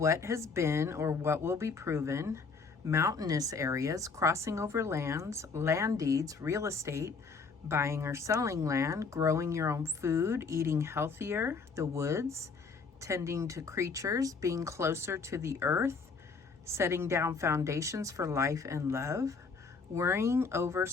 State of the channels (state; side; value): quieter; right; 4.7 dB